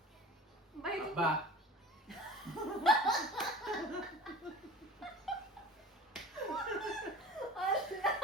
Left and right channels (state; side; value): normal; both; correlation 0.39